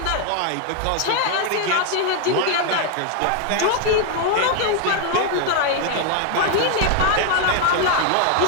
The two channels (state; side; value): different; both; correlation 0.00